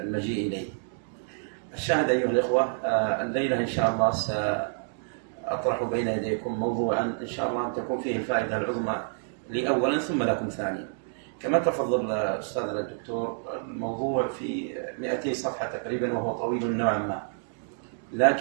إليه. الشاهد أيها الإخوة، الليلة إن شاء الله سأطرح بين يديكم موضوعا إن شاء الله أن تكون فيه الفائدة العظمى لي أولا ثم لكم ثانيا. كما تفضل أستاذنا الدكتور، الموضوع في 200 صفحة تقريبا وهو طويل نوعا ما،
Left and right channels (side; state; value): left; silent; digital silence